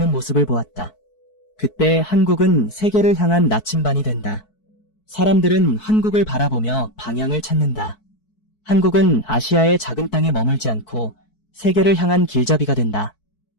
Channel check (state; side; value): late; right; 4.6 ms